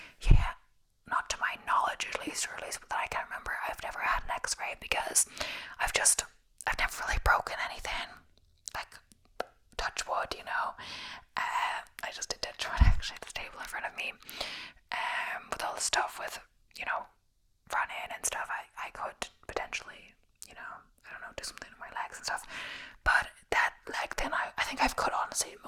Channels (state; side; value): identical; both; correlation 1.00